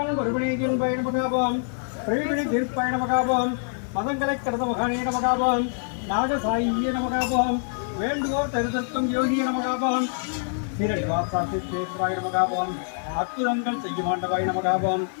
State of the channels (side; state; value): right; silent; digital silence